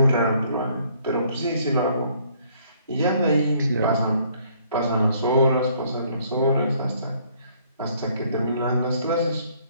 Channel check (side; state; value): both; inverted; correlation -0.63